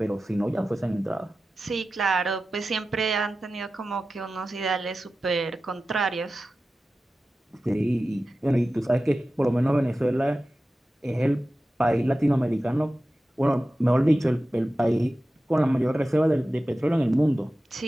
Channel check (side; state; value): both; normal; correlation 0.94